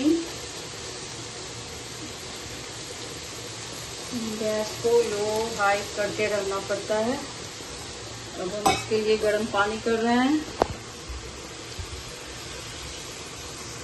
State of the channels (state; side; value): identical; both; correlation 1.00